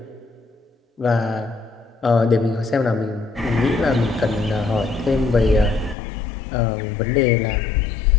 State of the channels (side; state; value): right; drops out; at 6.0 s